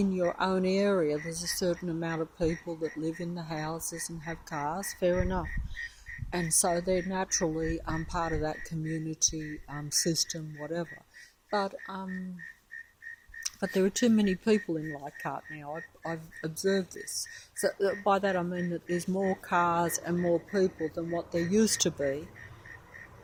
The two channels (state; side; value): identical; both; correlation 1.00